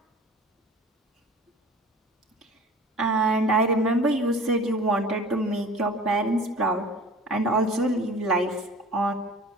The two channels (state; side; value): normal; both; correlation 0.43